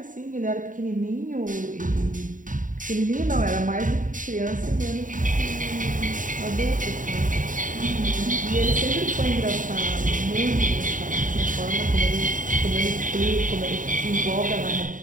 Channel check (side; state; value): left; late; 0.38 ms